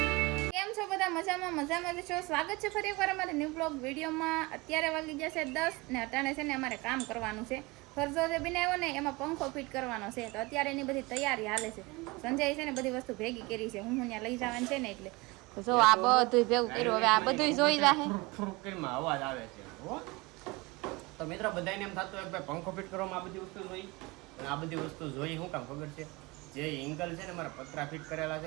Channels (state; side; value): quieter; left; 24.1 dB